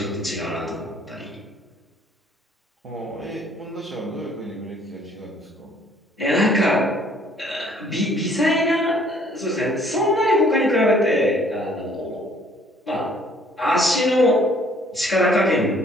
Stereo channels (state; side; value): normal; both; correlation 0.60